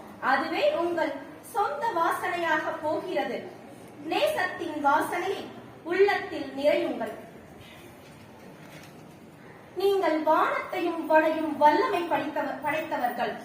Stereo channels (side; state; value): both; identical; correlation 1.00